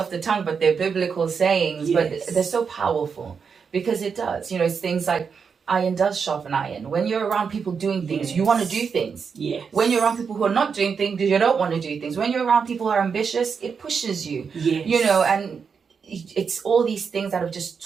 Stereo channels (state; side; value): quieter; left; 6.0 dB